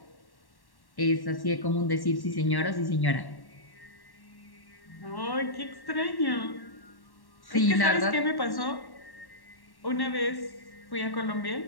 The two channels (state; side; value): late; right; 1.1 ms